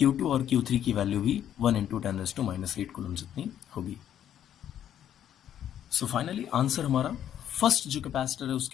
और Q3 की वैल्यू भी 1 इंटू 10⁻⁸ कूलम जितनी होगी। सो फाइनली आंसर हमारा, फर्स्ट जो कैपेसिटर है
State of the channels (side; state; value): right; quieter; 10.4 dB